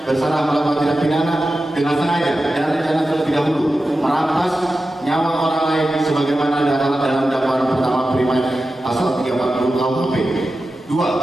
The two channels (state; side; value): normal; both; correlation 0.93